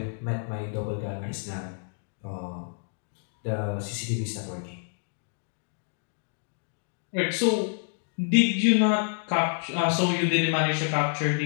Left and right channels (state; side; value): silent; right; digital silence